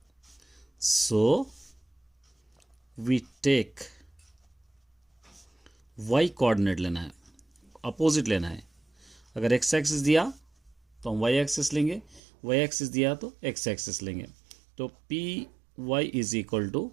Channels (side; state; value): left; drops out; at 12.2 s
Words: so we take y coordinate लेना है, अपोजिट लेना है। अगर x एक्सिस दिया तो हम y एक्सिस लेंगे, y एक्सिस दिया तो x एक्सिस लेंगे। तो P y is equal to